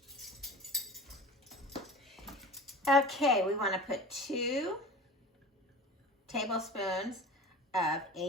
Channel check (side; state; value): both; normal; correlation 0.36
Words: Okay, we want to put 2 tablespoons of